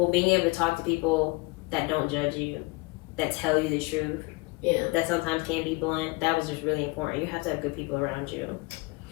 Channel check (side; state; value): right; quieter; 25.9 dB